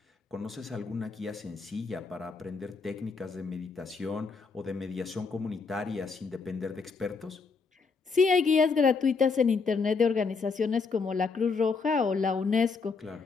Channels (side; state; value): right; quieter; 4.8 dB